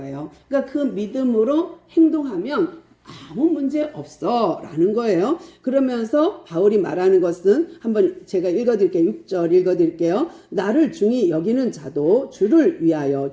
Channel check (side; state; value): both; identical; correlation 1.00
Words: 그러니까 그 믿음으로 행동하면 아무 문제 없어 라는 거예요. 그러면서 바울이 말하는 것은 한번 제가 읽어드릴게요. 6절 읽어드릴게요. 나를 중히 여기는 자도 주를 위하여